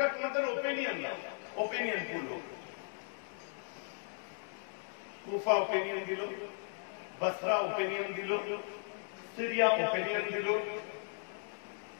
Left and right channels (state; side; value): silent; right; digital silence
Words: তোমাদের ওপিনিয়ন দাও, ওপিনিয়ন বললো। কুফা ওপিনিয়ন দিল, বসরা ওপিনিয়ন দিল, সিরিয়া ওপিনিয়ন দিল,